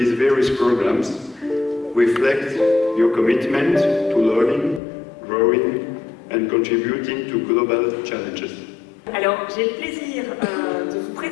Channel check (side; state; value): right; drops out; at 4.8 s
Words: various programs reflect your commitment to learning, growing and contributing to global challenges. Alors, j'ai le plaisir de vous